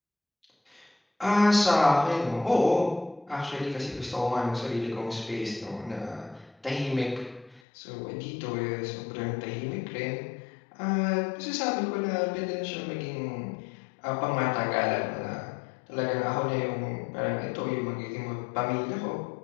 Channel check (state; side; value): drops out; right; at 7.6 s